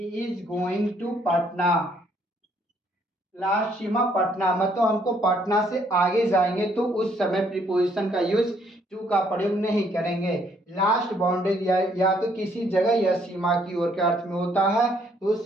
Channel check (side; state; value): both; normal; correlation 0.67